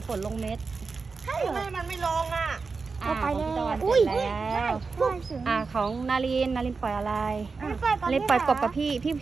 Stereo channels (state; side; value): quieter; left; 4.6 dB